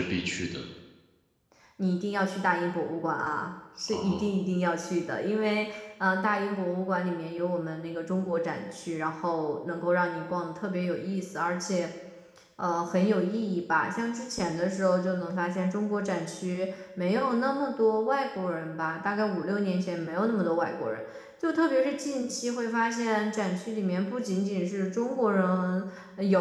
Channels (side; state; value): both; identical; correlation 1.00